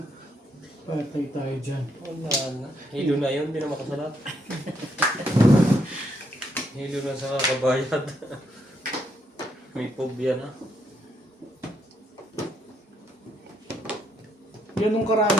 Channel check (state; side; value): normal; both; correlation 0.75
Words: Patay tayo dyan. Wala na. Hilo na yun, hindi na makasalat. Hilo na sa kabayad. May phobia na. Ganun